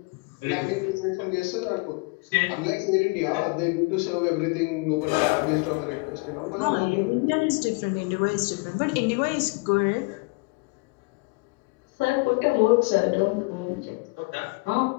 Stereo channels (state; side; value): quieter; right; 28.6 dB